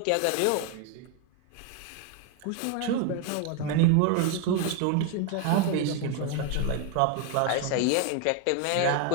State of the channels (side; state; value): both; different; correlation 0.01